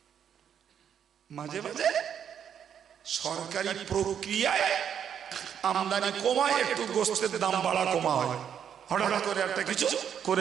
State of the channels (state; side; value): quieter; left; 8.5 dB